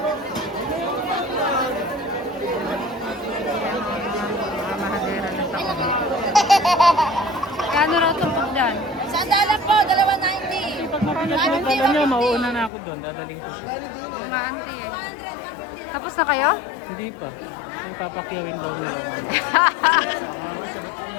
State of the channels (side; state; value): right; drops out; at 12.7 s